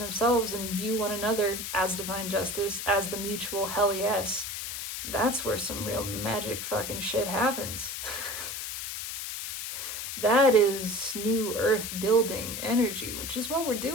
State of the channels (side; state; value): left; noise; hiss, 6 dB below the sound